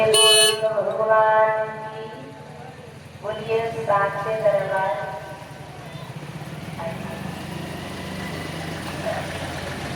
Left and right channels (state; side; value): identical; both; correlation 1.00